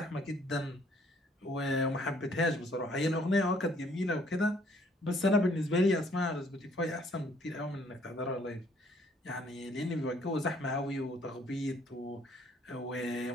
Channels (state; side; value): normal; both; correlation 0.63